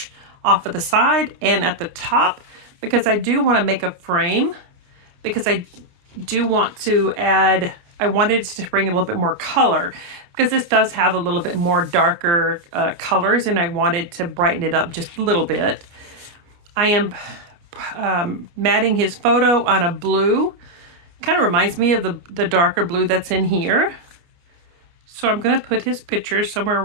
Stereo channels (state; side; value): late; left; 29 ms